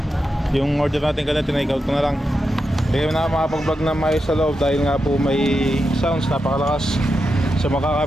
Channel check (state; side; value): normal; both; correlation 0.88